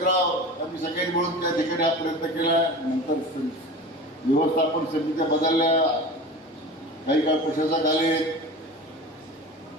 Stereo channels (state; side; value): normal; both; correlation 0.34